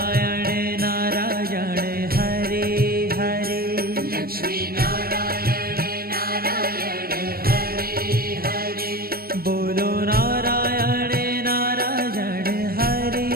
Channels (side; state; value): left; late; 0.44 ms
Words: नारायण हरे हरे लक्ष्मी नारायण नारायण हरि हरि बोलो नारायण नारायण हरे